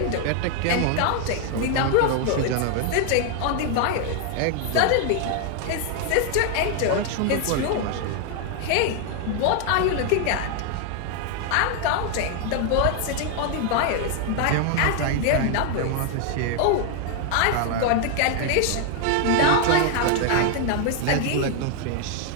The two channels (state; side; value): different; both; correlation 0.00